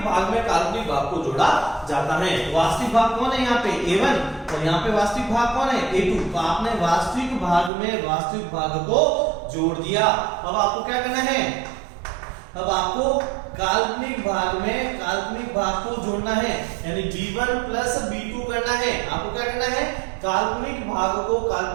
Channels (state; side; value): drops out; left; at 7.7 s